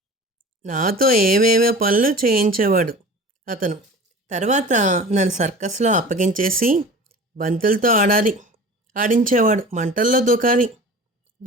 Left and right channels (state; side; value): normal; both; correlation 0.39